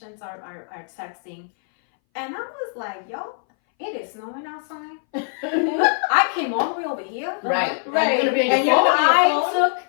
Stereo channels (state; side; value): silent; right; 60 dB below the other